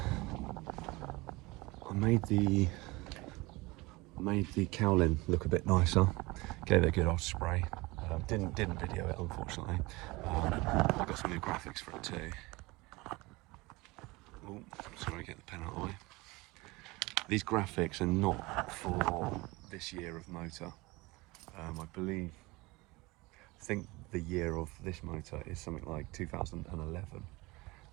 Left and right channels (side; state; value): left; quieter; 23.0 dB